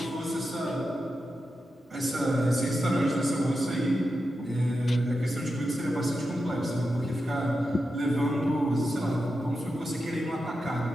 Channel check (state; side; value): normal; both; correlation 0.89